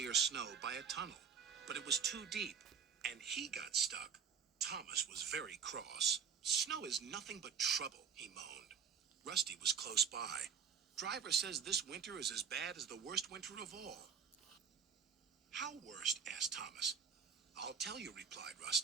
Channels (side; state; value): left; quieter; 6.9 dB